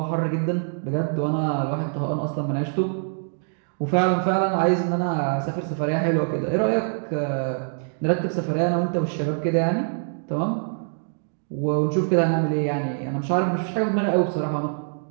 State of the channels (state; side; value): silent; left; digital silence